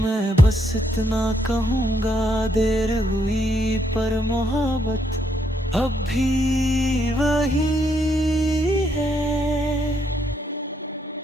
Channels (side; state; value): both; normal; correlation 0.75